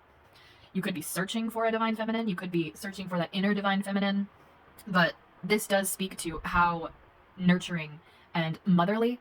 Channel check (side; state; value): both; identical; correlation 1.00